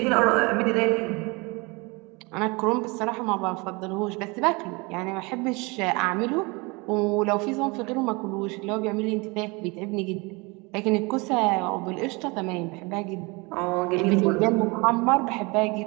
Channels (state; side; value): quieter; left; 27.0 dB